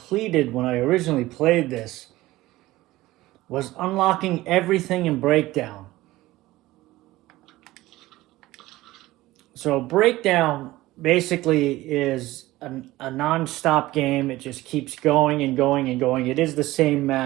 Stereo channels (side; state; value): left; quieter; 17.6 dB